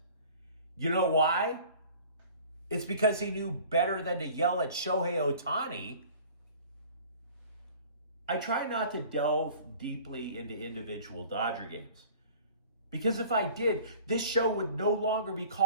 You know why? It's because he knew better than to yell at Shohei Ohtani. I try not to delve deeply into individual Dodger games. Because if I did, this show would no longer be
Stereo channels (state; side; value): inverted; both; correlation -0.47